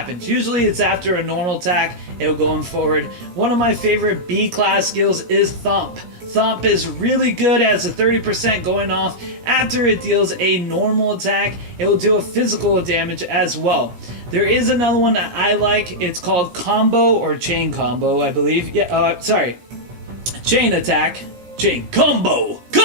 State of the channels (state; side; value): late; left; 17 ms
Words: Usually it's after a normal attack, it'll go in forward. One of my favorite B class skills is Thump. Thump is really good as a 30% going off. After it deals a normal attack, it will do a physical damage as well. There is another one that I like. It's called Combo or Chain Combo, I believe. Chain Attack. Chain Combo